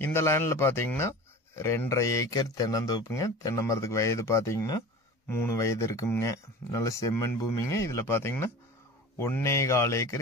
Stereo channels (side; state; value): both; normal; correlation 0.37